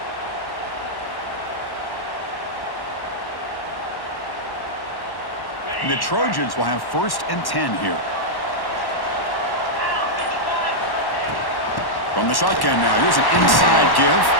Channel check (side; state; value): right; late; 1.1 ms